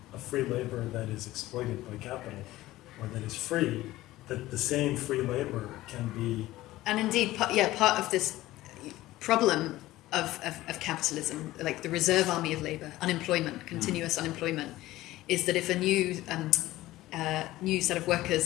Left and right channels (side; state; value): right; quieter; 16.7 dB